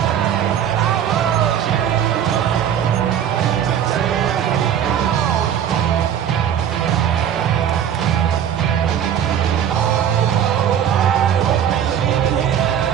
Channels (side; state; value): left; quieter; 9.3 dB